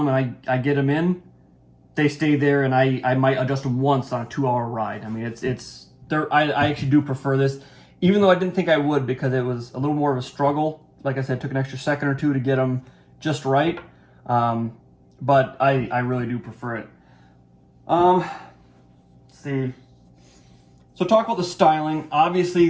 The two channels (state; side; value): identical; both; correlation 1.00